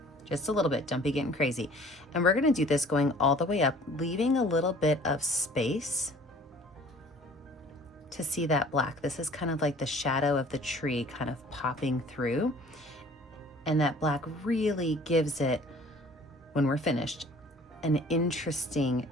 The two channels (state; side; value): normal; both; correlation 0.51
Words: just a little bit, don't be getting crazy. And we're gonna do this going all the way up, leaving a little bit of space to see that black. This is kind of like the shadow of the tree kind of popping through. And that black really gives it, when we're finished, an interesting